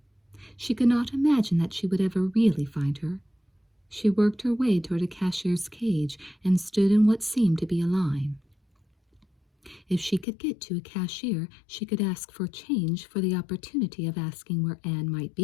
She could not imagine that she would ever really find her. She worked her way toward a cashier's cage and stood in what seemed to be a line. If she could get to a cashier, she could ask for change for the opportunity of asking where Anne might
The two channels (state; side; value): drops out; right; at 10.2 s